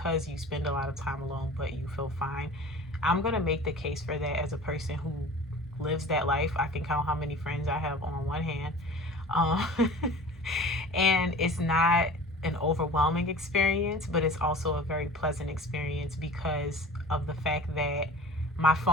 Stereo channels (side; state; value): both; normal; correlation 0.41